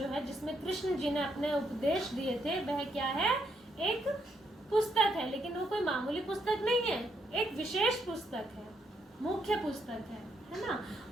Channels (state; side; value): normal; both; correlation 0.76